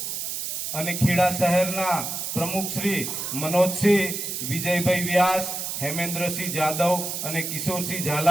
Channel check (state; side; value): noise; right; hiss, 4 dB below the sound